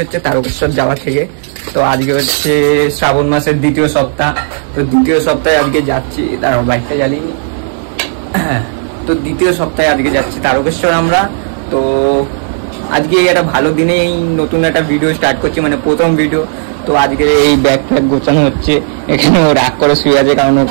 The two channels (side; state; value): left; silent; digital silence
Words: হচ্ছে তারকেশ্বর যাওয়া থেকে। তো আজকে হচ্ছে শ্রাবণ মাসের 2য় সপ্তাহ। তো 2য় সপ্তাহে আজকে যাচ্ছি, তার বাইকটা জ্বালিনি। তো 2য় সপ্তাহে আজকে যাচ্ছি তারকেশ্বর আমরা। তো আজকে একটা ভালো দিনেই নতুন একটা ভিডিও স্টার্ট করছি, মানে প্রথম ভিডিও। তো আজকে এই ব্যাগ ফ্যাগ গোছানো হচ্ছে, এখানে ও রাগ করে শুয়ে আছে কারণ